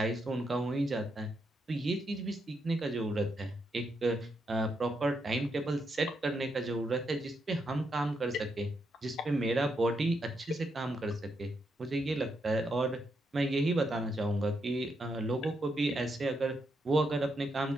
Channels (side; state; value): both; normal; correlation 0.81